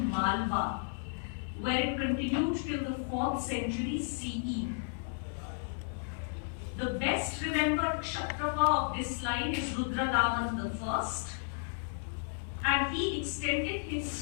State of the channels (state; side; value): silent; right; digital silence